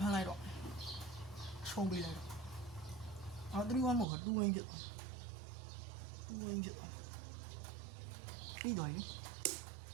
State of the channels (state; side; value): drops out; left; at 4.0 s